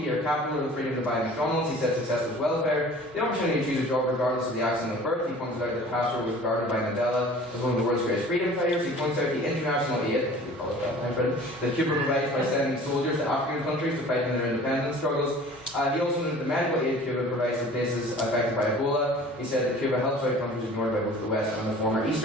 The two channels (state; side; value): normal; both; correlation 0.45